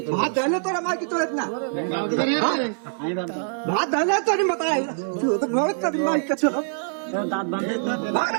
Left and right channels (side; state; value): left; silent; digital silence